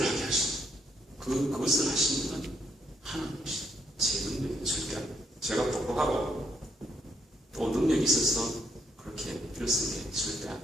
하게 하시는 그것을 하시는 분은 하나님이시죠. 제 능력이 절대 아니에요. 제가 똑똑하고 또 능력이 있어서 그렇게 일을 쓰는 게 절대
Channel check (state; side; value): normal; both; correlation 0.73